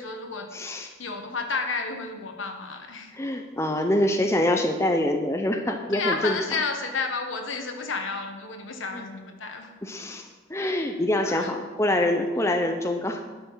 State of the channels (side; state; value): both; normal; correlation 0.54